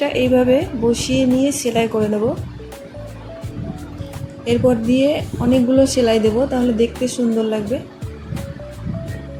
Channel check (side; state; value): both; identical; correlation 1.00